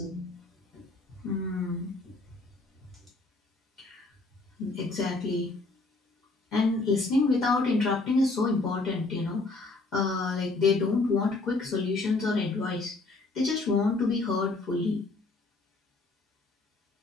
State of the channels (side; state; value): right; quieter; 3.4 dB